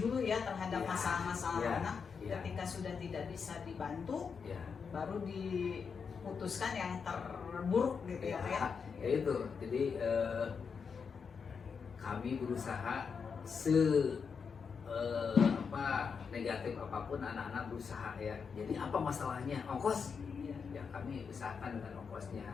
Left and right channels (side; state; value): right; quieter; 5.9 dB